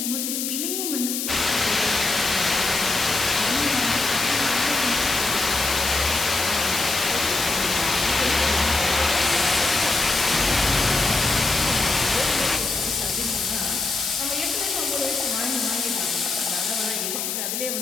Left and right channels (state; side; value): noise; left; hiss, 2 dB below the sound